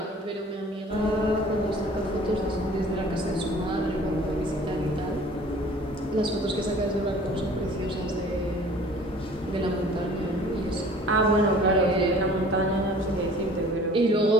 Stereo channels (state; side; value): normal; both; correlation 0.49